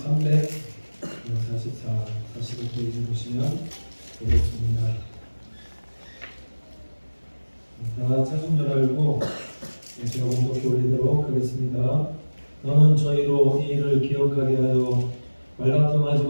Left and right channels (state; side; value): inverted; both; correlation -1.00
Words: 45페이지 보시면 되겠습니다. 다 찾은 줄 알고 제가 공독해 올리도록 하겠습니다. 너는 저희로 이 일을 기억하게 하여 말다툼하지